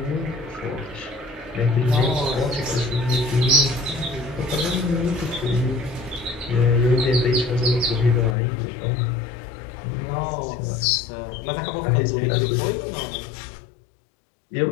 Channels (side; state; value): right; drops out; at 8.3 s